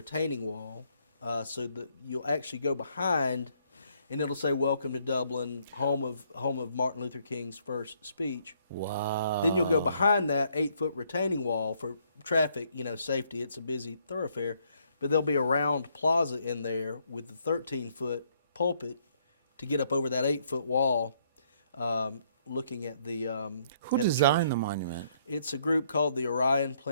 wall, so that you'll actually go behind, and it'll say "Welcome to Dublin, home of Martin Luther King's first speech." Wow. Then you'll go behind that 8-foot retaining wall for traffic, safety. It's a busy thoroughfare, but there'll be a round plaza in there with the 13-foot pulpit to get up over that 8-foot wall. Looking at the Who at the designed church. the monument? It's a group called the Orion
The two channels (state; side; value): inverted; both; correlation -0.69